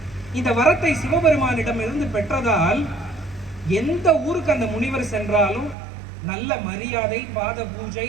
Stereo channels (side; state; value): left; drops out; at 5.8 s